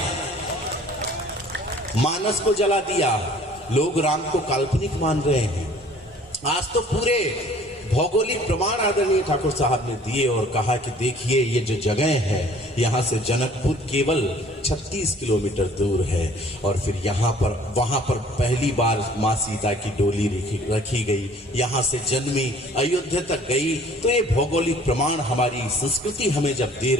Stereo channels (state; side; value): normal; both; correlation 0.53